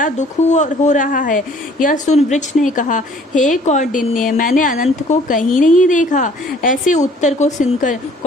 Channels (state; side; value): normal; both; correlation 0.55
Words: दुख हो रहा है। यह सुन वृक्ष ने कहा, हे कौंडिन्य, मैंने अनंत को कहीं नहीं देखा। ऐसे उत्तर को सुनकर